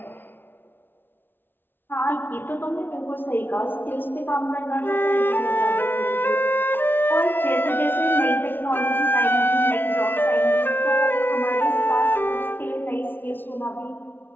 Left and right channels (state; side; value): late; right; 0.10 ms